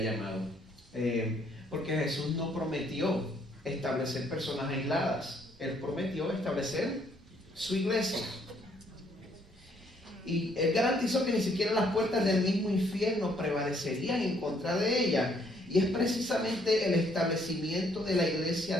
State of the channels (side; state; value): both; normal; correlation 0.67